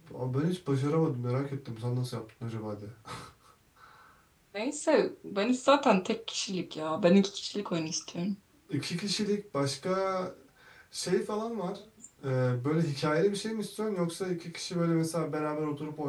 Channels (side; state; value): both; identical; correlation 1.00